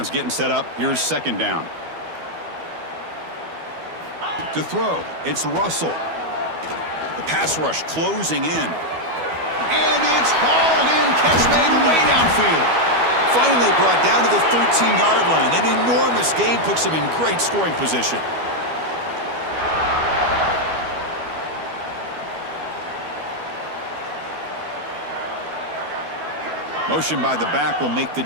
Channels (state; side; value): late; left; 12 ms